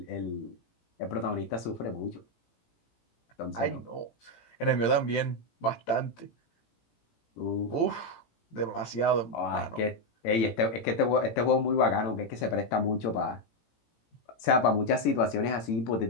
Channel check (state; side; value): late; right; 18 ms